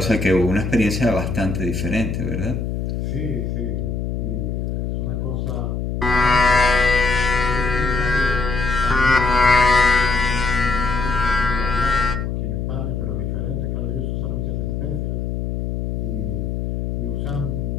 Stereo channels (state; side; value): noise; left; hum, 2 dB below the sound